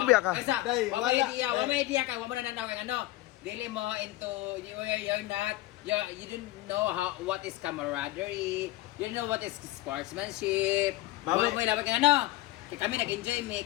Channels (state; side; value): quieter; right; 17.1 dB